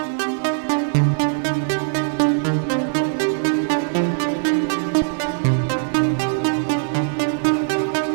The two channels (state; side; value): silent; left; 58 dB below the other